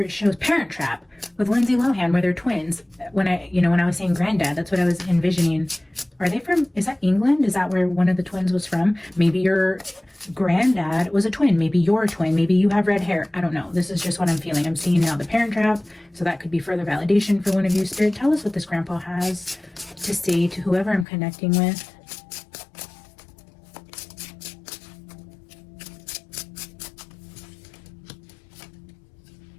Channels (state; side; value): drops out; right; at 21.1 s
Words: shows, Parent Trap, with Lindsay Lohan, where they're twins. When I was saying granddad, that's what I was envisioning. Are they from, is that England? Is that where one of the twins was from? Maybe your granddad was a twin. Maybe you're a twin. Maybe you have red hair. I don't know. This is just what I'm feeling. I'm seeing now the Parent Trap. So that could be further validation for one of you. Spirit, tell us what this grandpa has to say to whoever I'm connecting with.